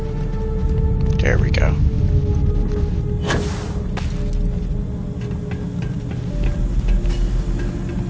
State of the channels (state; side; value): identical; both; correlation 1.00